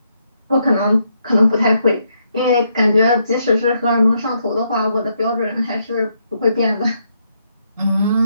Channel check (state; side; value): inverted; both; correlation -0.77